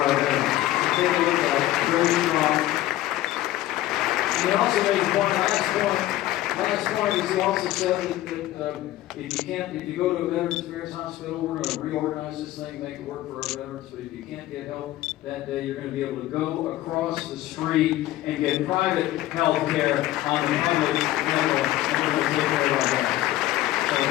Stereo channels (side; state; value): right; quieter; 15.3 dB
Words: veterans. Take a look at it, very strong. And he also made the last point is he also said that if you go to a Veterans Affairs hospital, we're going to reorganize this thing, make it work for our veterans, but if you can't get help that day, you're going to be able to go across the street and get private health care on the public level, and we're going to take care of our veterans. So